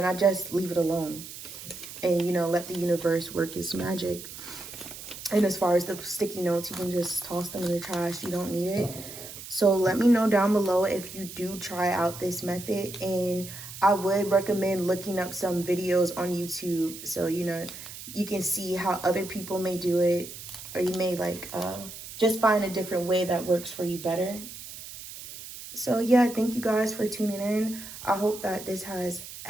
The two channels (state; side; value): noise; right; hiss, 12 dB below the sound